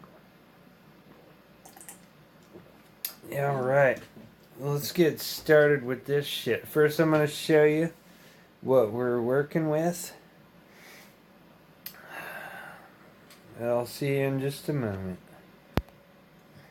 Alright, let's get started with this shit. First I'm going to show you what we're working with. I'll see you in just a moment.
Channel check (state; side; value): identical; both; correlation 1.00